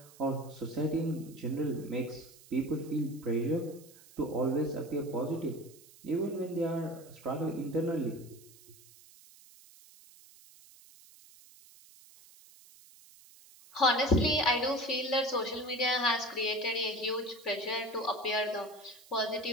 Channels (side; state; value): right; noise; hiss, 23 dB below the sound